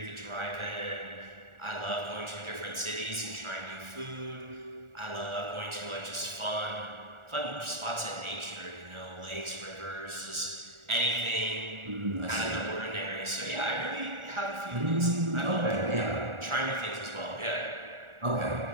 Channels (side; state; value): left; late; 1.4 ms